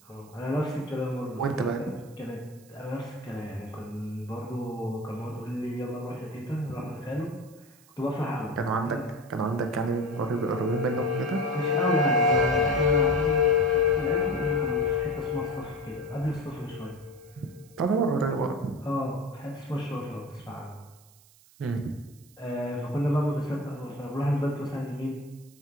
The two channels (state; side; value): noise; right; hiss, 27 dB below the sound